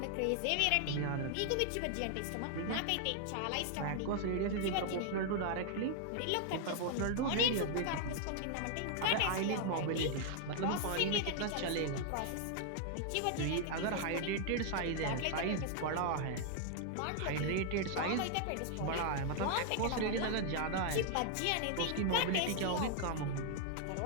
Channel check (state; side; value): different; both; correlation 0.00